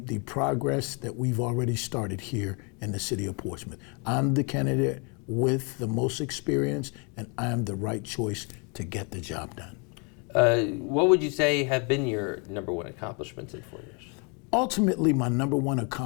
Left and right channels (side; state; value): right; quieter; 34.0 dB